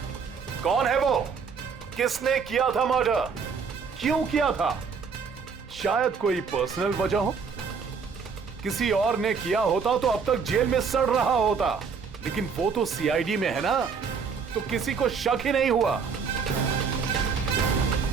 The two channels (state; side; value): quieter; left; 5.7 dB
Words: कौन है वो? किसने किया था मर्डर? क्यों किया था? शायद कोई पर्सनल वजह हो। किसी और ने किया होता तो अब तक जेल में सड़ रहा होता, लेकिन वो तो सीआईडी में है ना, तो किसी को शक ही नहीं हुआ